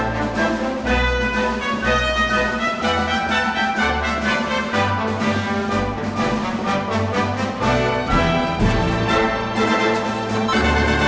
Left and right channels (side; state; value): both; identical; correlation 1.00